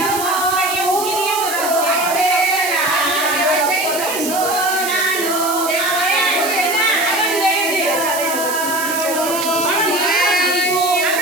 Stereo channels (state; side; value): noise; right; hiss, 6 dB below the sound